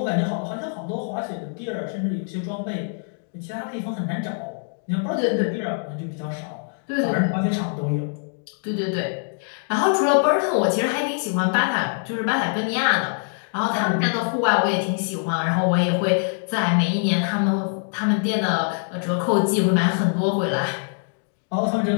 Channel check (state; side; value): silent; right; 63 dB below the other